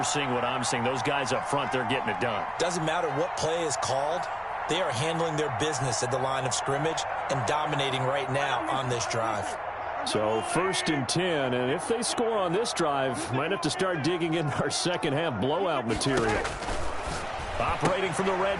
seeing what I'm seeing. Those guys up front, they're getting it done. Doesn't matter what play is called. They are handling their business at the line of scrimmage and dominating right now on this drive. So 1st and 10, and if they score on this drive, might have to start digging in our second half blowout material. Operating from the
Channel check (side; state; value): both; identical; correlation 1.00